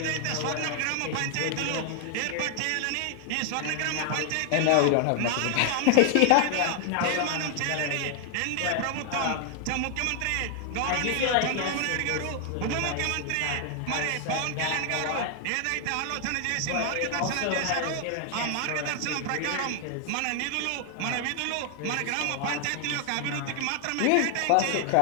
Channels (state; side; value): different; both; correlation 0.00